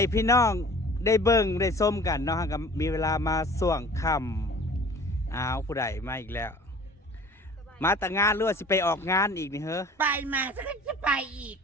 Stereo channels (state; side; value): normal; both; correlation 0.46